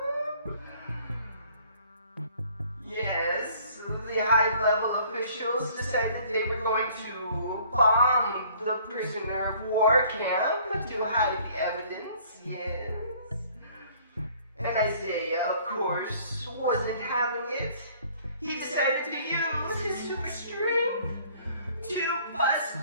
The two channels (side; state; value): both; inverted; correlation -0.56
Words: Yes, the high-level officials decided they were going to bomb the prisoner of war camp to hide the evidence. Yes. And Isaiah, of course, wasn't having it. He decided to use his super strength to bust